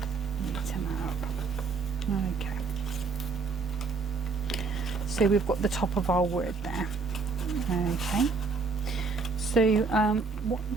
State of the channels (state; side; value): quieter; left; 4.6 dB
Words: Okay, so we've got the top of our word there. Okay, so what I'm